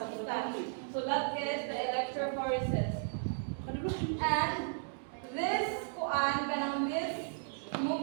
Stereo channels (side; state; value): left; silent; digital silence